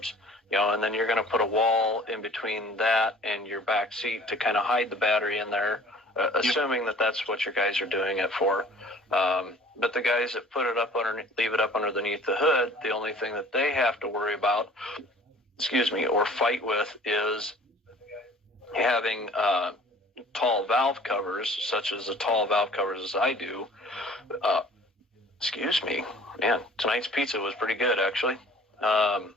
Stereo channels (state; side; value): normal; both; correlation 0.50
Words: and then you're going to put a wall in between that and your back seat to kind of hide the battery in there, assuming that that's what your guys are doing it for. But the guys that put it up leave it up underneath the hood, the only thing that they have to worry about, or fight with, is having tall valve covers, such as the tall valve covers as I do. Man, tonight's pizza was pretty good, actually.